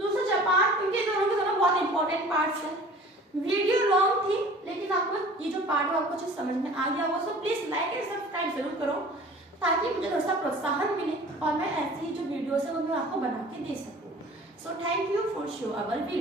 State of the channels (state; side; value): normal; both; correlation 0.45